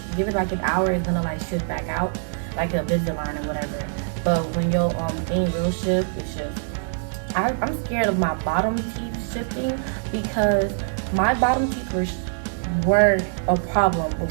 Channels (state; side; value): silent; left; digital silence